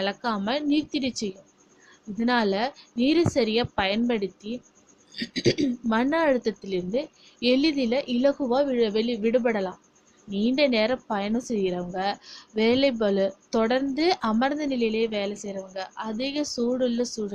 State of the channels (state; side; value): identical; both; correlation 1.00